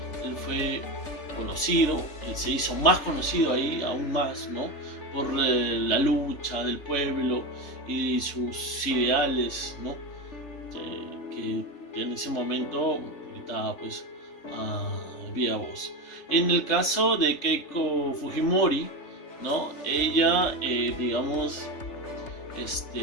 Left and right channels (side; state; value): right; late; 3.3 ms